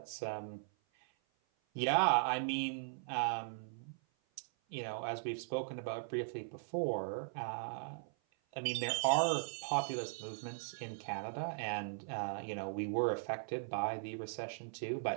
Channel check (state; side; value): silent; left; 52 dB below the other